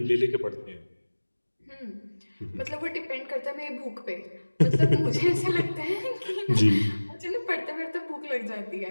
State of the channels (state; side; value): inverted; both; correlation -1.00